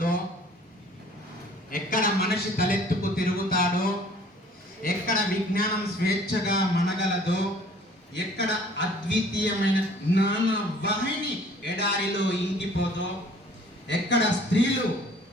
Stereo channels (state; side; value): normal; both; correlation 0.53